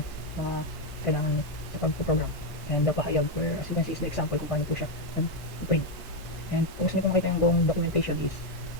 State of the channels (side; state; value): right; late; 1.6 ms